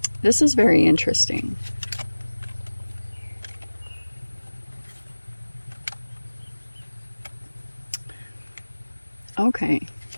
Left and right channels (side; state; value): both; inverted; correlation -1.00